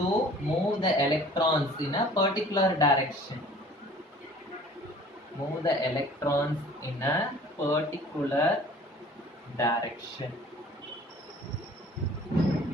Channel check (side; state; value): both; normal; correlation 0.49